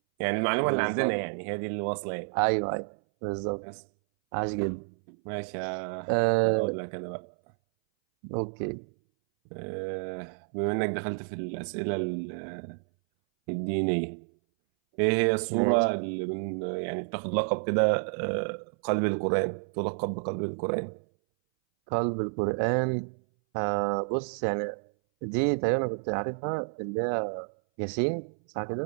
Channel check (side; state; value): left; silent; 58 dB below the other